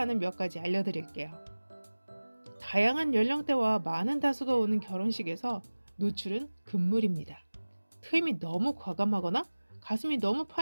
몇 가지 알려드릴게요. 다양한 연령대와 많은 다수가 오는 결혼식에서 노출은 금물입니다. 트임이 너무 과감하거나 가슴이 너무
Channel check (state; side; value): inverted; both; correlation -1.00